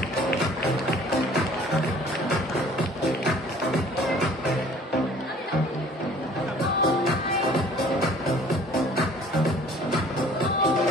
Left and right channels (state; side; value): normal; both; correlation 0.52